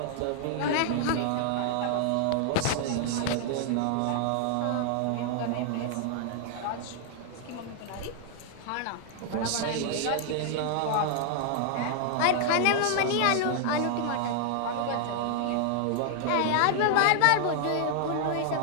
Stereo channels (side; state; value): both; different; correlation 0.00